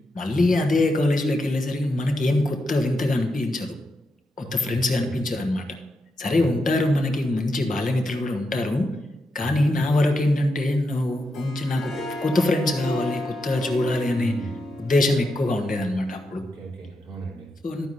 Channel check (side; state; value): both; normal; correlation 0.85